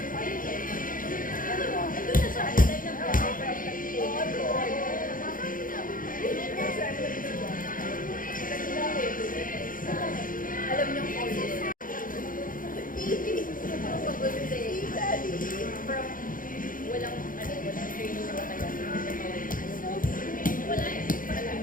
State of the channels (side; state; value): right; late; 0.40 ms